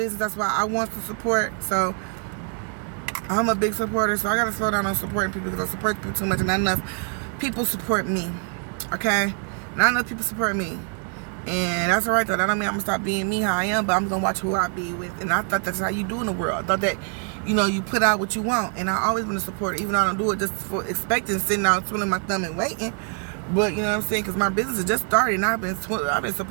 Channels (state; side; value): quieter; left; 39.8 dB